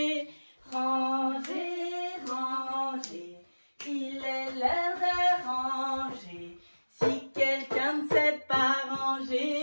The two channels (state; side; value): inverted; both; correlation -1.00